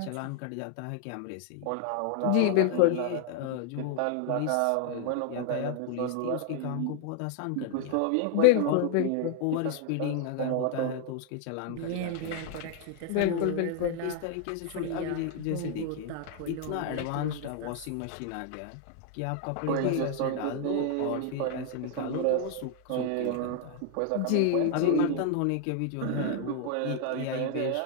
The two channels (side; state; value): both; different; correlation 0.00